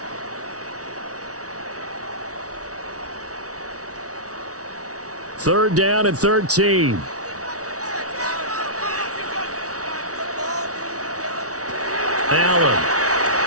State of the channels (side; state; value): left; late; 0.67 ms